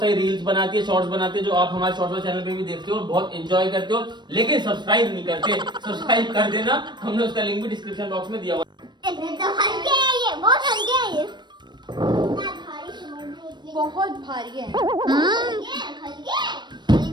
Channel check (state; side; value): late; left; 0.22 ms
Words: रील्स बनाती है, शॉर्ट्स बनाती है, जो आप हमारे शॉर्ट्स चैनल पे भी देखते हो और बहुत एंजॉय करते हो, लेकिन सब्सक्राइब नहीं करते। सब्सक्राइब कर देना, हमने उसका लिंक भी डिस्क्रिप्शन बॉक्स में दिया हुआ है। तो हल्के है ये, बहुत हल्के है ये। इतना भारी समझ, बहुत भारी है। हल्के